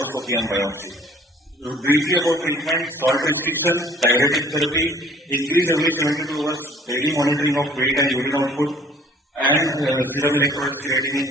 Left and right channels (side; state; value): both; normal; correlation 0.55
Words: and biopsy. Briefly about treatment, salt restriction, diuretic therapy, increase every 72 hours, daily monitoring of weight and urine output, and serum electrolytes creatinine